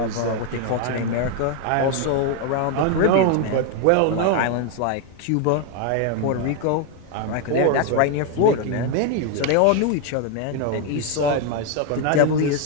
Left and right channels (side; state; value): both; different; correlation 0.01